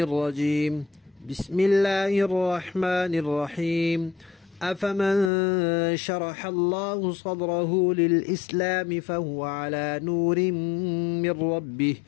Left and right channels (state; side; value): drops out; right; at 5.3 s